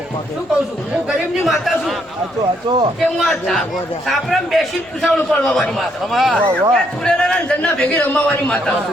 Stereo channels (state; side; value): noise; left; rumble, 30 dB below the sound